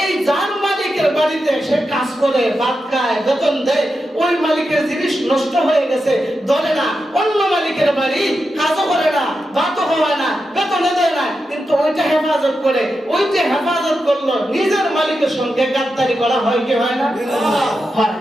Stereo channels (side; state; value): both; normal; correlation 0.88